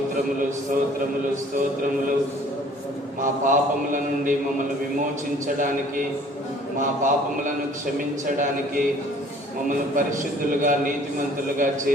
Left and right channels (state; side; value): normal; both; correlation 0.54